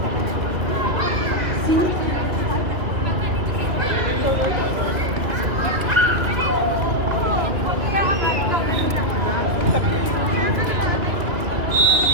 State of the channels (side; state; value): left; late; 2.4 ms